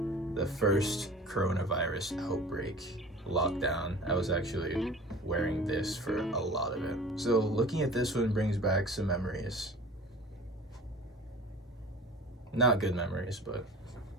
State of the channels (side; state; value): both; normal; correlation 0.41